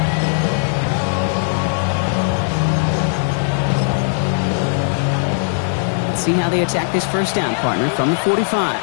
See how they attack this 1st down, partner, from the 45.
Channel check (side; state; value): right; silent; 67 dB below the other